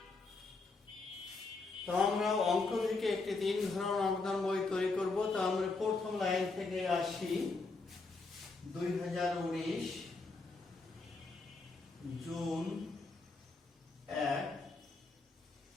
তো আমরা অঙ্ক থেকে একটি 3 ঘর নগদান বই তৈরি করব। তো আমরা প্রথম লাইন থেকে আসি। 2019 জুন 1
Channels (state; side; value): quieter; right; 3.8 dB